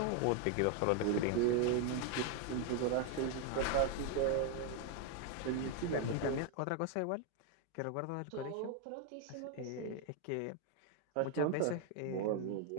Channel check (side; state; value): both; different; correlation 0.01